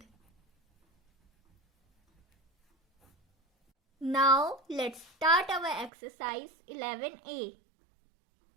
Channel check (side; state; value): left; drops out; at 5.9 s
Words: Now let's start our exercise 11A.